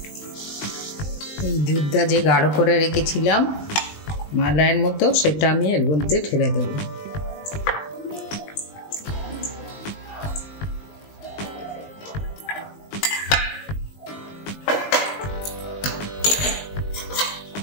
এই দুধটা যে গাঢ় করে রেখেছিলাম মালাইয়ের মতো, সেটা আমি এর মধ্যে ঢেলে দেবো।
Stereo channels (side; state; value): right; late; 19 ms